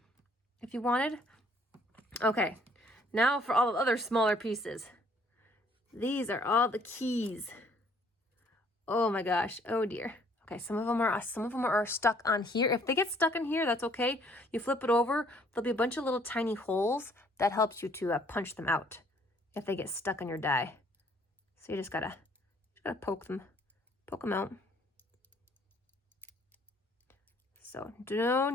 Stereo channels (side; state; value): both; normal; correlation 0.61